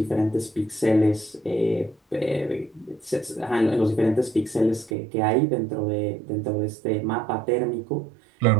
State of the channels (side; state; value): left; drops out; at 4.9 s